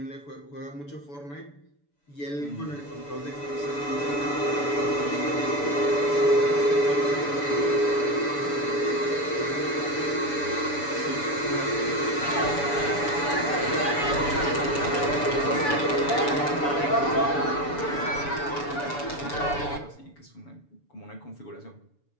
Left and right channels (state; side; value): late; right; 7.0 ms